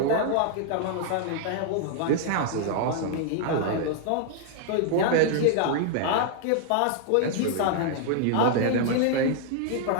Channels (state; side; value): different; both; correlation 0.00